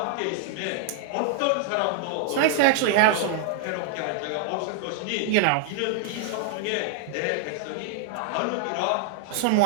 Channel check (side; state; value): both; different; correlation -0.01